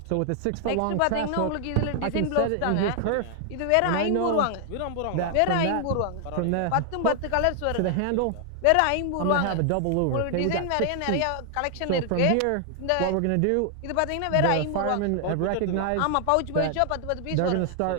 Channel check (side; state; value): both; different; correlation 0.00